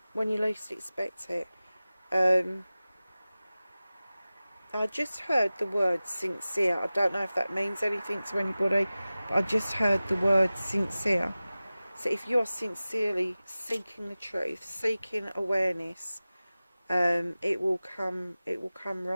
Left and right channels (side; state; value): both; inverted; correlation -0.97